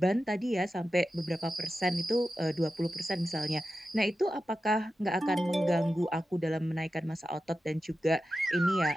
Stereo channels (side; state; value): both; normal; correlation 0.92